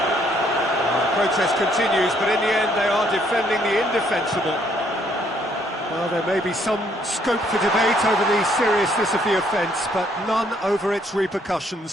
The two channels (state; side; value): normal; both; correlation 0.67